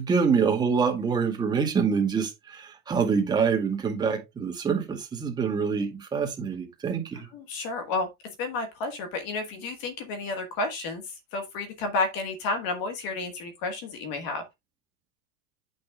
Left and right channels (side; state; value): left; quieter; 3.4 dB